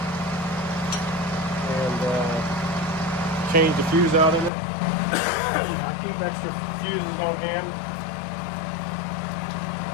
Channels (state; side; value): drops out; right; at 4.5 s